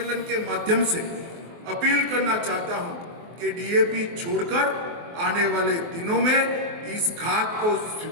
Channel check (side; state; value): left; late; 24 ms